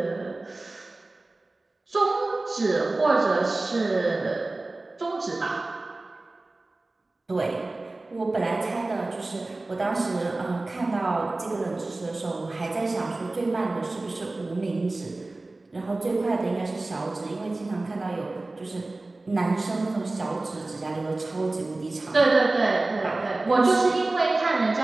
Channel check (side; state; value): left; quieter; 3.1 dB